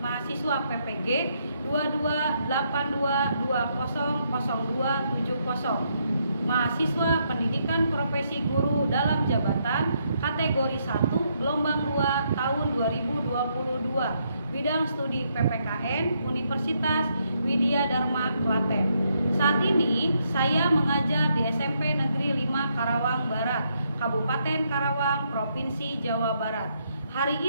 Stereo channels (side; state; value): both; inverted; correlation -0.75